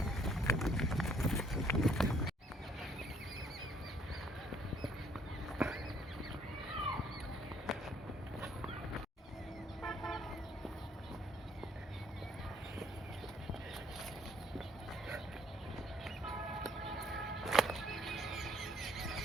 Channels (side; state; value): both; normal; correlation 0.63